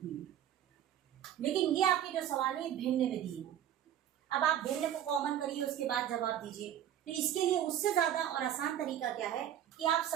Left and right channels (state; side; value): quieter; left; 10.8 dB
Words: है। लेकिन ये आपके जो सवाल है भिन्न में दिए हैं। अब आप भिन्न को कॉमन करिए, उसके बाद जवाब दीजिए। तो इसके लिए उससे ज्यादा और आसान तरीका क्या है कि आप